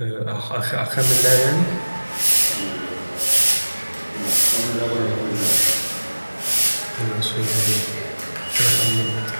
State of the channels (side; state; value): both; inverted; correlation -1.00